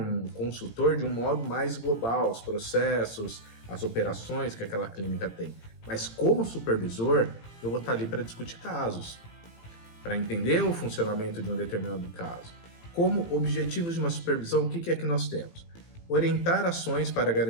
consultor de um modo mais global, os processos, as operações que aquela clínica tem. Mas como supervisor, eu vou estar ali para discutir casos, para entender o funcionamento de um determinado caso. Como objetivos de uma supervisão, o que é que nós temos? Orientar ações para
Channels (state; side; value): late; right; 18 ms